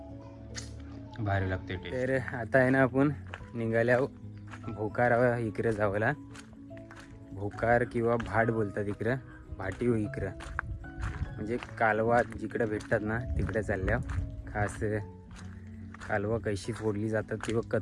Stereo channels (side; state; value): both; identical; correlation 1.00